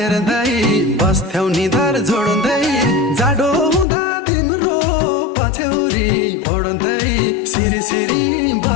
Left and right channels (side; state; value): right; drops out; at 3.9 s